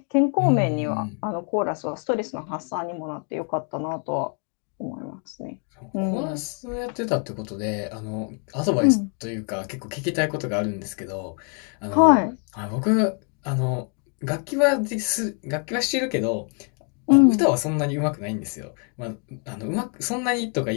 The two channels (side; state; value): right; quieter; 39.7 dB